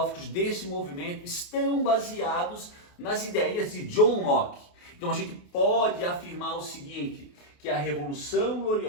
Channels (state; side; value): late; right; 28 ms